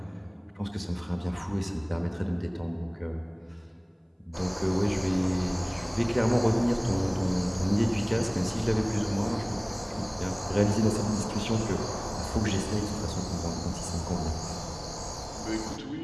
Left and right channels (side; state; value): both; identical; correlation 1.00